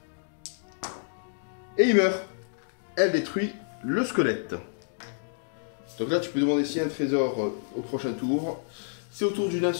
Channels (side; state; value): right; silent; digital silence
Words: Et il meurt. Elle détruit le squelette. Donc là, tu peux demander s'il y a un trésor au prochain tour. C'est au tour du nain